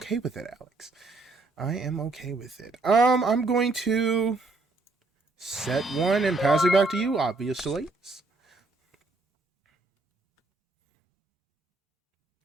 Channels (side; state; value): left; quieter; 3.4 dB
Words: with it, Alex. I am okay with it. I'm going to set one and pass it back to you, obviously.